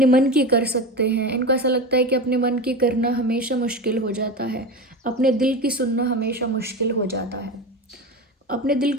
मन की कर सकते हैं। इनको ऐसा लगता है कि अपने मन की करना हमेशा मुश्किल हो जाता है, अपने दिल की सुनना हमेशा मुश्किल हो जाता है। अपने दिल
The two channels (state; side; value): normal; both; correlation 0.24